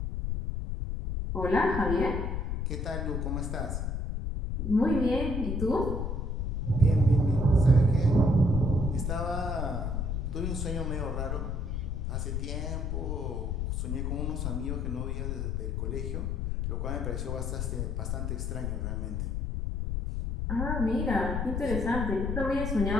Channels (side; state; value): left; noise; rumble, 1 dB below the sound